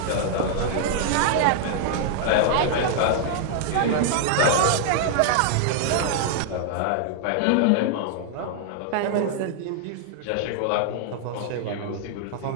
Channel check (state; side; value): different; both; correlation 0.00